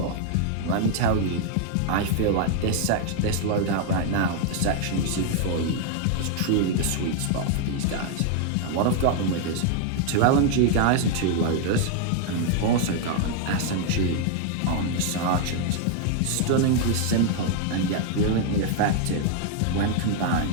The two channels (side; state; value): both; different; correlation 0.00